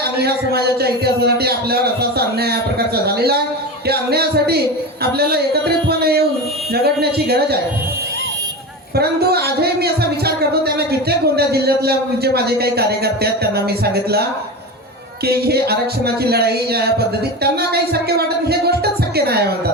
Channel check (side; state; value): both; normal; correlation 0.24